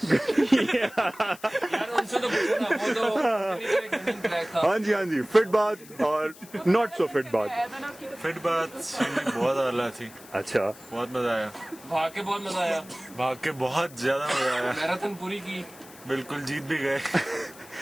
यार उनसे तो पूछो ना, वो तो हाँ जी, फिट बात और नॉट सो फिट बात। फिट बात बहुत आला थी। अच्छा, बहुत मजा आया, भाग के बहुत मजा आया, भाग के बहुत ज्यादा मजा आया। मैराथन पूरी की, बिल्कुल जीत भी गए।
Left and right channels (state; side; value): noise; left; hiss, 20 dB below the sound